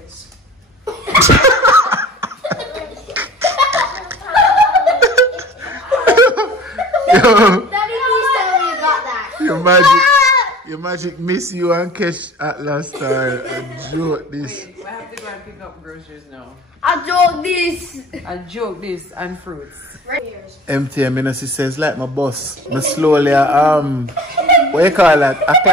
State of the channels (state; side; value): normal; both; correlation 0.44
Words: Yo, Daddy, please tell me you got that. your magic miss you and catch at last time. I joke this. Wait, I have to go and pick up groceries now. I joke this. I joke this and fruits. Empty, I mean, as he says, like my boss. I slowly, what you call that?